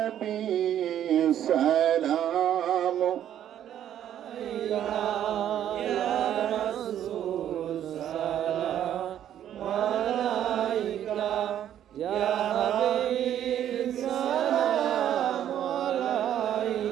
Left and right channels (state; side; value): quieter; left; 10.7 dB